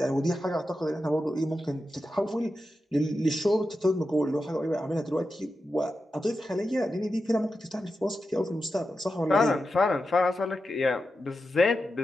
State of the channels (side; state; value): both; normal; correlation 0.90